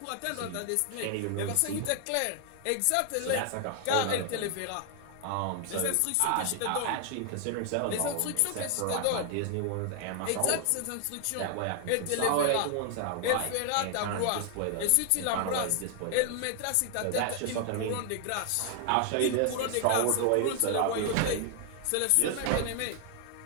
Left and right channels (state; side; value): different; both; correlation 0.00